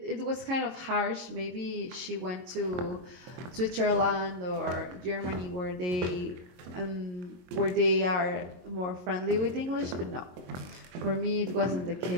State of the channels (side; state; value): left; late; 22 ms